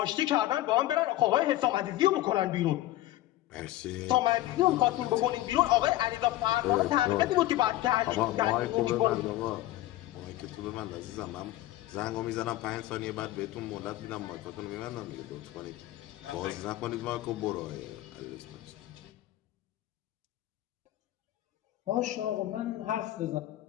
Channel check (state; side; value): quieter; right; 15.6 dB